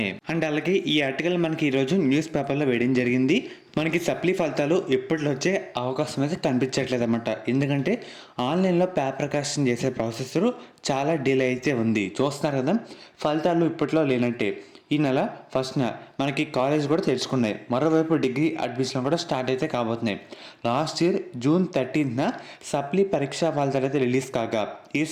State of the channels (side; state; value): both; identical; correlation 1.00